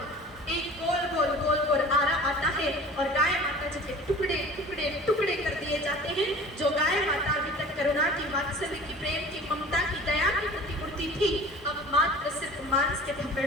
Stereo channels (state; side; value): normal; both; correlation 0.43